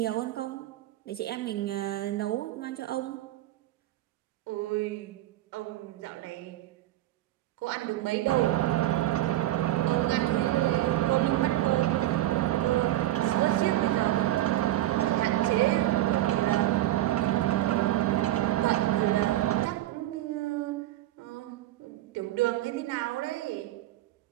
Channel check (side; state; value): left; quieter; 14.9 dB